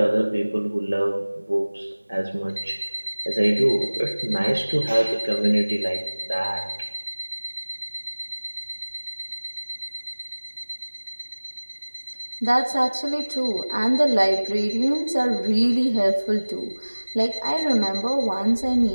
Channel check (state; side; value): inverted; both; correlation -1.00